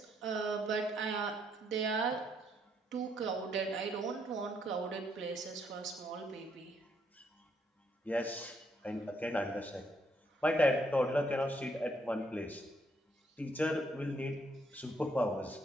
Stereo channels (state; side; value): normal; both; correlation 0.72